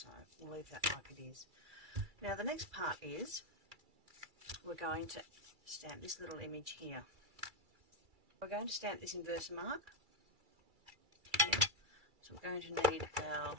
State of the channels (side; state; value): left; late; 2.3 ms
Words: we'll leave that like it is. Now the next part is we're going to stamp this little image here. We're going to stamp this inverse mark here, so we're going to need our